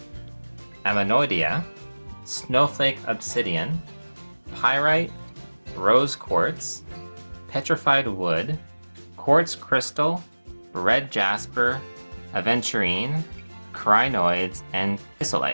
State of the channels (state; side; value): inverted; both; correlation -1.00